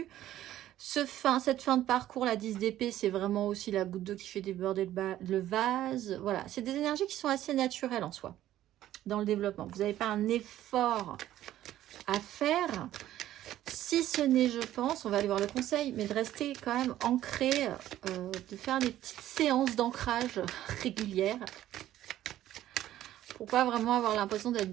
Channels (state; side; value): quieter; left; 13.2 dB